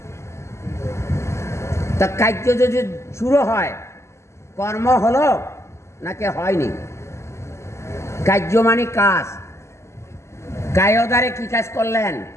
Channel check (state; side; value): late; right; 0.13 ms